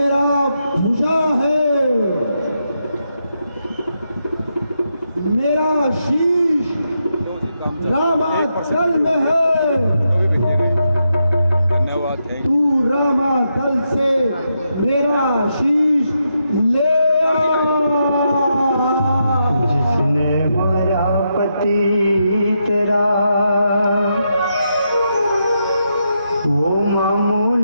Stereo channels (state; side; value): inverted; both; correlation -0.83